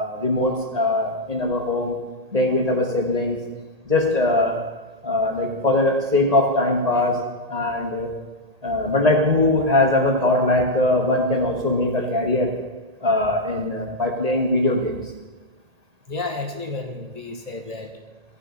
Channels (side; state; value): left; late; 1.8 ms